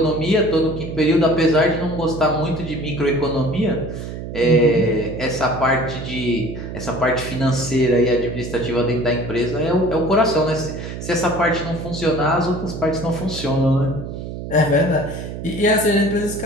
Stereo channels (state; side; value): noise; right; hum, 8 dB below the sound